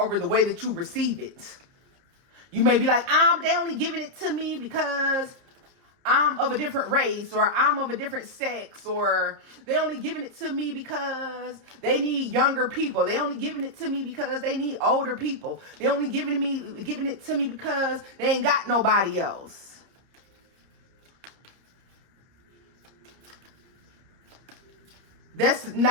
the way that you receive it. You may be like, they only giving it to me because I'm of a different race, or I'm of a different sex, or they only giving it to me because they need younger people. They only giving it to me because they need older people. They only giving it to me because they ain't got nobody else. That's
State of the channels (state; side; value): late; left; 31 ms